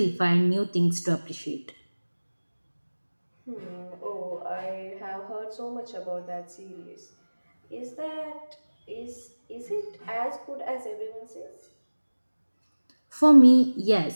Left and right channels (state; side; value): inverted; both; correlation -1.00